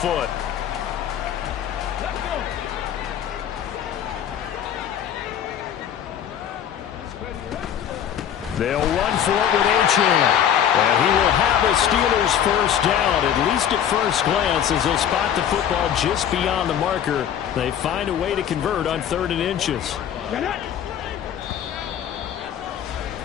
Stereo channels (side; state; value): right; quieter; 9.5 dB